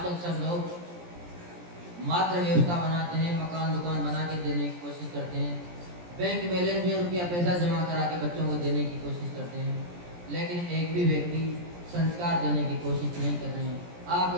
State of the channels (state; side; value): late; left; 17 ms